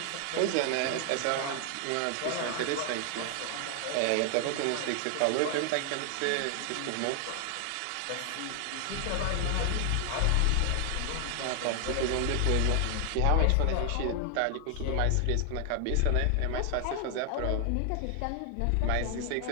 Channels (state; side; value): different; both; correlation 0.00